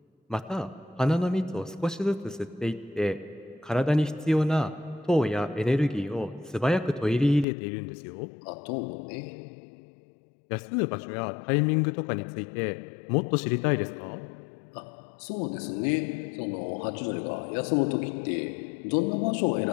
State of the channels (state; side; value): drops out; right; at 7.5 s